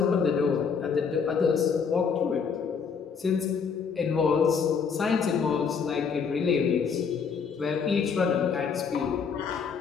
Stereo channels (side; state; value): right; quieter; 6.1 dB